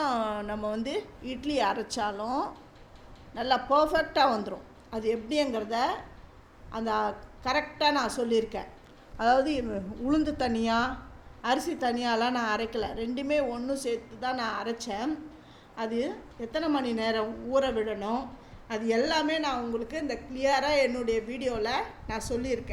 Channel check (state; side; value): identical; both; correlation 1.00